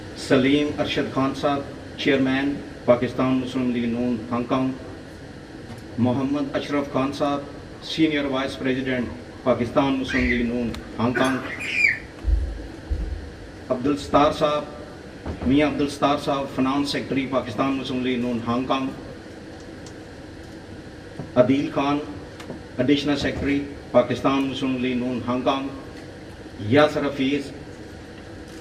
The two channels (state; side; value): identical; both; correlation 1.00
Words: Saleem Arshad Khan sahab, chairman Pakistan Muslim League Noon Hong Kong, Muhammad Ashraf Khan sahab, senior vice president Pakistan Muslim League Noon Hong Kong, Abdul Sattar sahab, Mian Abdul Sattar sahab, finance secretary Pakistan Muslim League Noon Hong Kong, Adeel Khan, additional secretary Pakistan Muslim League Noon Hong Kong, Yasir Hafeez,